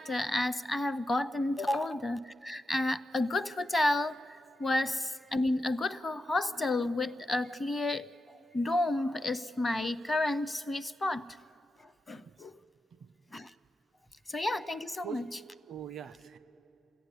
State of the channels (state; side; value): normal; both; correlation 0.89